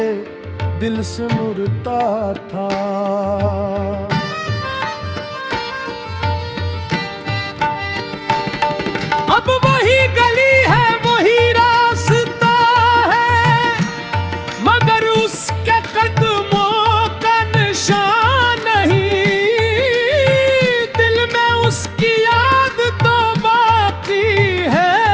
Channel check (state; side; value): identical; both; correlation 1.00